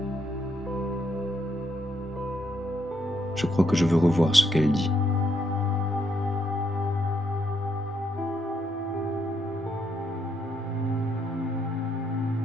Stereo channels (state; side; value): normal; both; correlation 0.75